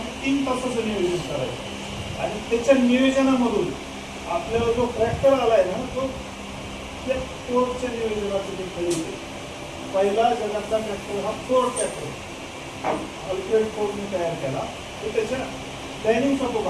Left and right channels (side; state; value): both; identical; correlation 1.00